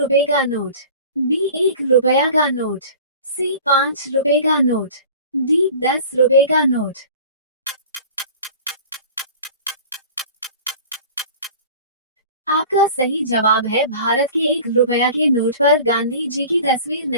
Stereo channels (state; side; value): inverted; both; correlation -0.41